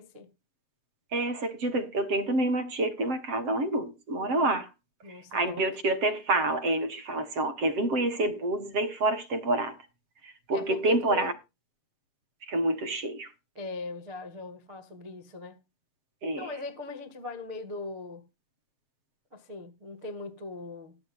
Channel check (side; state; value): left; late; 7.5 ms